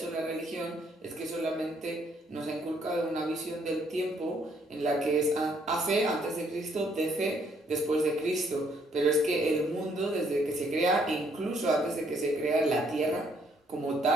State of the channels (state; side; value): normal; both; correlation 0.68